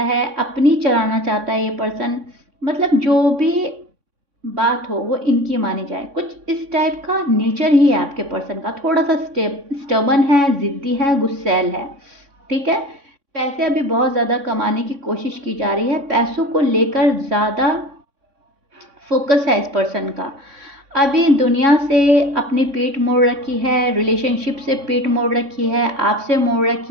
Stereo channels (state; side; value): late; left; 3.6 ms